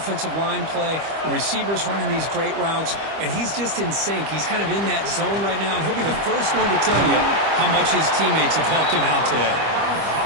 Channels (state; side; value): late; left; 25 ms